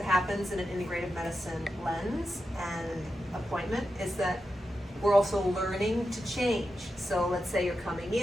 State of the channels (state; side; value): normal; both; correlation 0.89